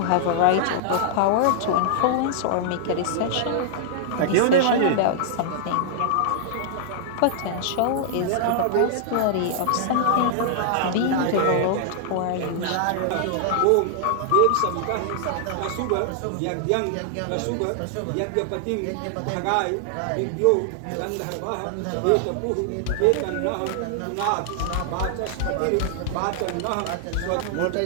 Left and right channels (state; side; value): different; both; correlation -0.01